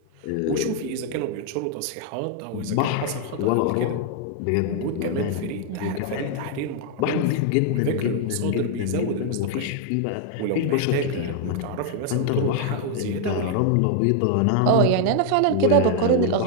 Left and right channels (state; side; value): different; both; correlation 0.00